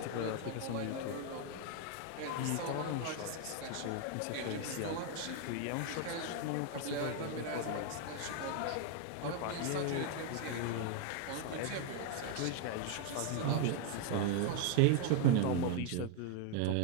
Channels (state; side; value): different; both; correlation 0.00